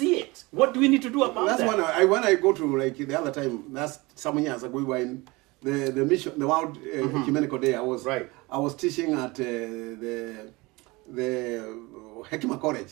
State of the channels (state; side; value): quieter; left; 23.6 dB